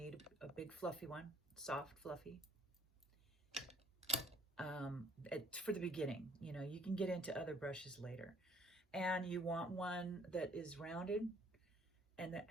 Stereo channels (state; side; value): normal; both; correlation 0.60